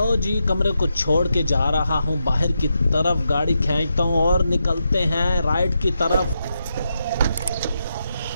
जी, कमरे को छोड़ के जा रहा हूँ बाहर की तरफ, गाड़ी खींचता हूँ और निकलते हैं राइड की तरफ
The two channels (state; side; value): inverted; both; correlation -0.85